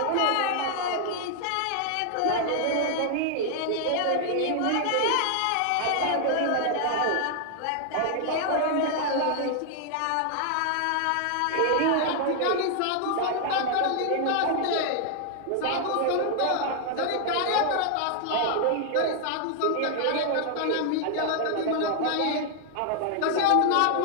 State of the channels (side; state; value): both; different; correlation 0.00